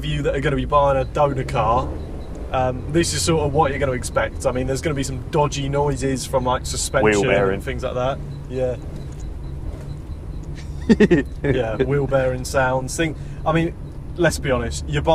you that are going to be buying a donor car, this is sort of what you're going to expect. I mean, there's going to be some dodgy noises from like suspension and things like that. Yeah. Yeah, wheel bearing sounds. I mean, let's be honest, you're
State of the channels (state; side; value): identical; both; correlation 1.00